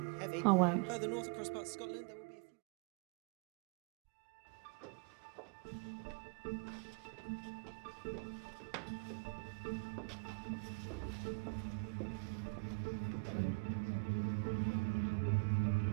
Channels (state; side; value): quieter; left; 32.9 dB